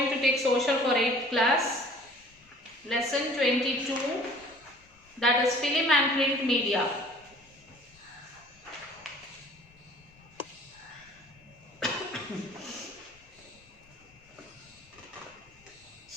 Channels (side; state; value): left; noise; rumble, 30 dB below the sound